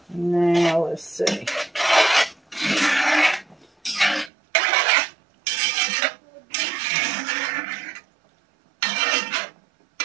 Now let's see.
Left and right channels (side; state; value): left; drops out; at 4.3 s